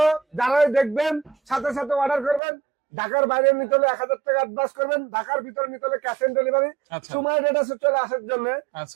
যারাই দেখবেন সাথে সাথে অর্ডার করবেন। ঢাকার বাইরে নিতে হলে 1,000 টাকা অ্যাডভান্স করবেন, ঢাকার ভিতরে নিতে হলে ক্যাশ অন ডেলিভারি। আচ্ছা, সুমাইয়া ট্রেডার্সে চলে আসার জন্য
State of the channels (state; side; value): drops out; left; at 2.4 s